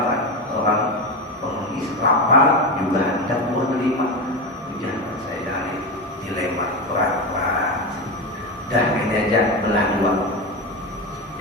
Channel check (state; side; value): normal; both; correlation 0.17